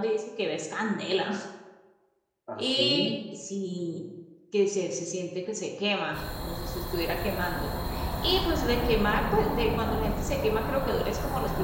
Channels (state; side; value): identical; both; correlation 1.00